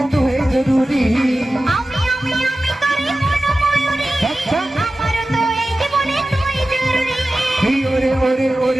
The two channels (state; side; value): normal; both; correlation 0.95